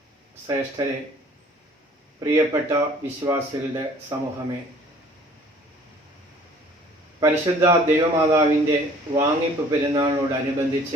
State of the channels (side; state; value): both; normal; correlation 0.53